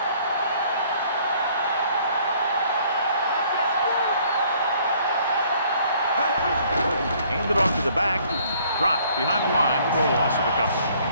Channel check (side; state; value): both; inverted; correlation -0.60